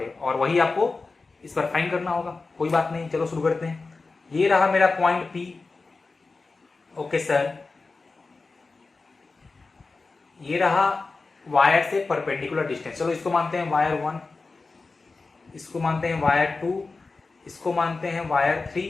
और वही आपको इस बार फाइंड करना होगा। कोई बात नहीं, चलो शुरू करते हैं। ये रहा मेरा पॉइंट P। ओके सर, ये रहा वायर से परपेंडिकुलर डिस्टेंस। चलो इसको मानते हैं वायर 1, इसको मानते हैं वायर 2, इसको मानते हैं वायर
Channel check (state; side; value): quieter; right; 3.9 dB